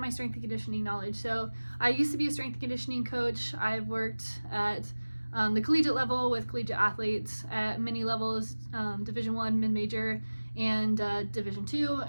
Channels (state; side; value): inverted; both; correlation -1.00